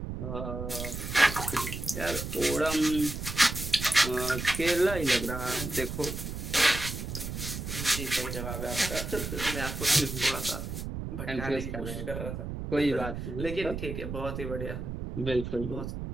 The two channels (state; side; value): noise; right; rumble, 6 dB below the sound